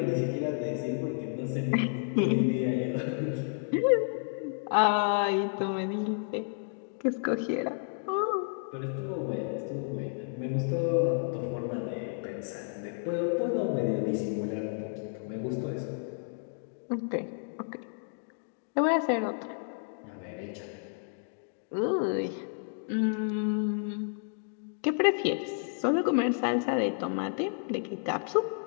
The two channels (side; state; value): right; silent; digital silence